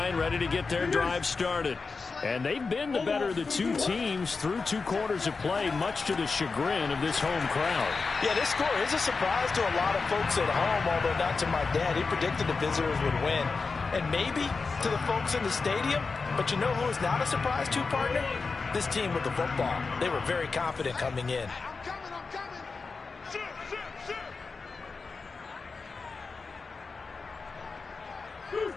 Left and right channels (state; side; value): quieter; right; 4.4 dB